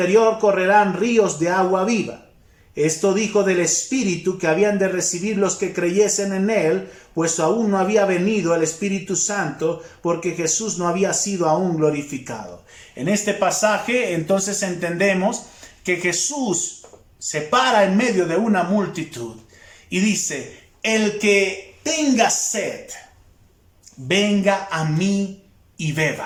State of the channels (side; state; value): both; identical; correlation 1.00